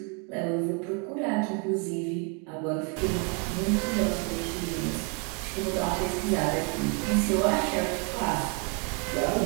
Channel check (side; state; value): left; quieter; 34.0 dB